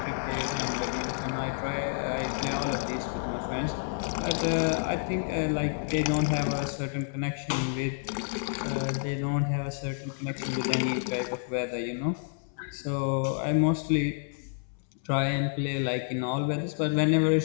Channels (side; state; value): right; silent; 58 dB below the other